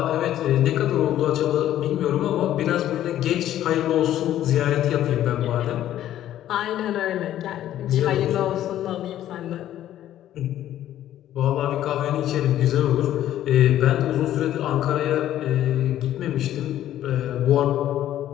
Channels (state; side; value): quieter; right; 12.3 dB